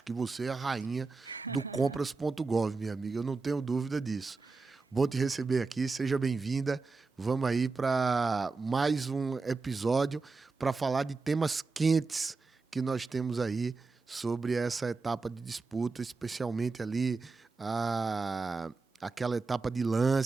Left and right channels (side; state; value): left; quieter; 4.1 dB